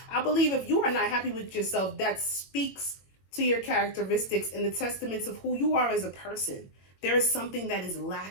I believe if you are not happy with yourself, that speaks to your characteristics and the testaments of who you are as a person. There is something that is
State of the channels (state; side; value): late; right; 21 ms